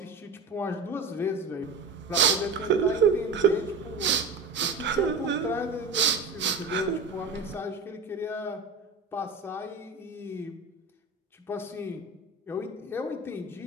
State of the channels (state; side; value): quieter; left; 3.9 dB